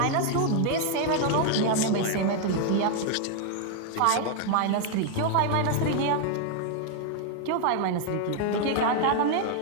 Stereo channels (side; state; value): both; different; correlation 0.00